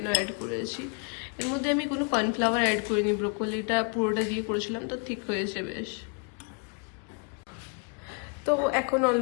অ্যাড করেছি। এর মধ্যে আমি কোনো কর্নফ্লাওয়ার অ্যাড করিনি, ব্রোকলিটা পুরোটা দিয়ে করেছিলাম, তো ঠিক হয়েছে বেশ। তো এখন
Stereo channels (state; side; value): quieter; right; 38.2 dB